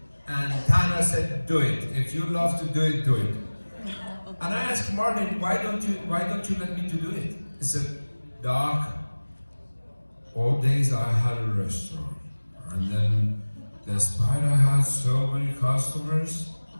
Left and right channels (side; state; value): both; inverted; correlation -1.00